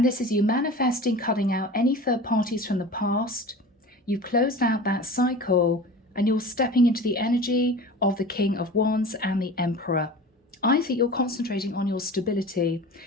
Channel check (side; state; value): both; normal; correlation 0.36